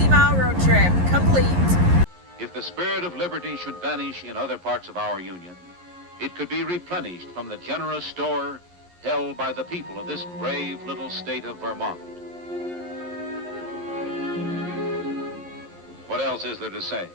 road trip complete. If the spirit of liberty should vanish in other parts of our union, it could be replenished from the generous store held by the people of this brave little state of Vermont. What else is there to say?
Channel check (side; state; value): left; late; 11 ms